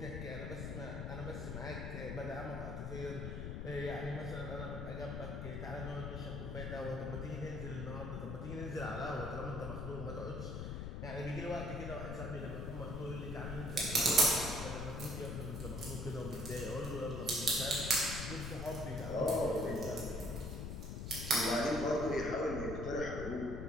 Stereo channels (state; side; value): noise; left; rumble, 4 dB below the sound